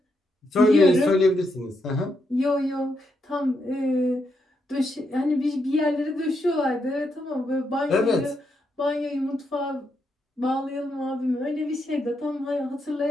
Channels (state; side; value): normal; both; correlation 0.80